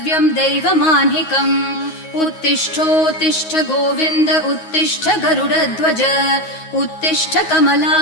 दैवमान्हिकम् उत्तिष्ठोत्तिष्ठ गोविन्द उत्तिष्ठ गरुडध्वज उत्तिष्ठ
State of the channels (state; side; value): late; right; 9.5 ms